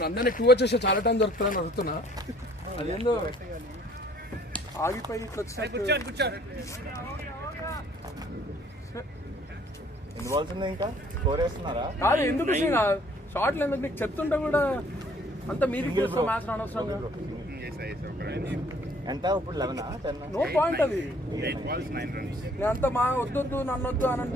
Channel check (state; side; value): normal; both; correlation 0.58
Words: అందరినీ 2 వచ్చేసి చాలా టైం దొరుకుతుందని అడుగుతున్నా. అదేందో ఆగిపోయి ఎన్ని బాల్స్ ఉన్నాయి ఇంకా? స్కోర్ వేస్తున్నారా? కాదు ఎందుకు షార్ట్లు ఎందుకు నీకు చెప్తుంటే కూడా అంత మీదికి వస్తాం మ్యాచ్ అనవసరంగా. ఎంత ఇప్పుడు 11 10? నో పాయింట్ అది. 8 balls 9 runs. నేను అంత మా వద్దొద్దు నన్ను వద్దు అని